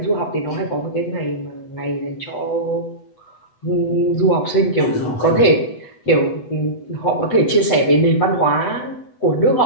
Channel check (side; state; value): right; late; 8.1 ms